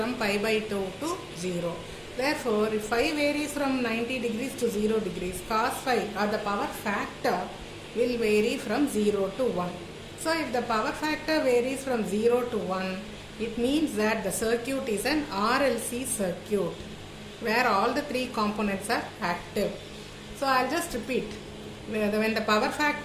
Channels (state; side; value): identical; both; correlation 1.00